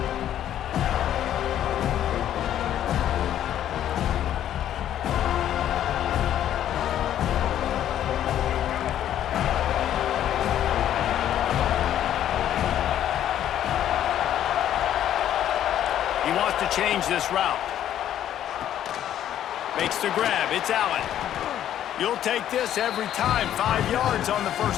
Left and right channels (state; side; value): quieter; right; 11.1 dB